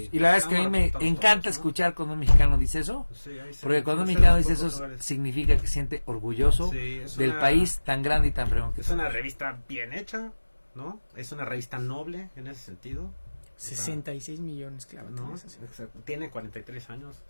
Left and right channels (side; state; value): both; inverted; correlation -1.00